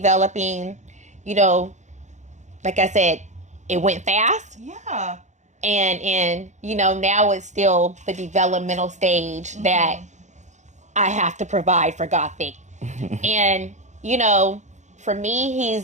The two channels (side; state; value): left; late; 0.34 ms